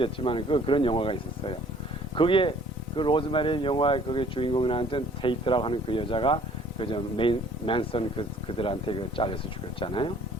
그런 영화가 있었어요. 거기에 그 로즈메리 영화의 거기 주인공이 나왔던 테이트라고 하는 그 여자가 그저 맨슨 그들한테 잘려서 죽였잖아요.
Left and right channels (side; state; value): both; normal; correlation 0.55